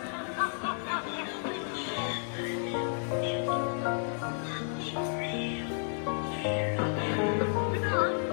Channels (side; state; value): right; silent; digital silence